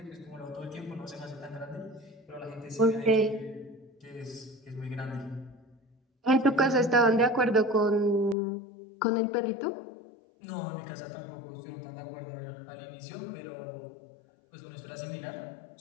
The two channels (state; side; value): drops out; right; at 8.3 s